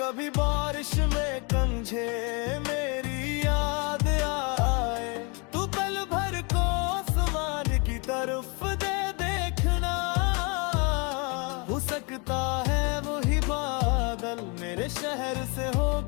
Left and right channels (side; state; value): right; quieter; 31.8 dB